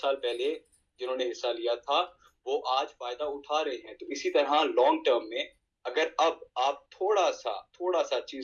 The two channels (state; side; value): identical; both; correlation 1.00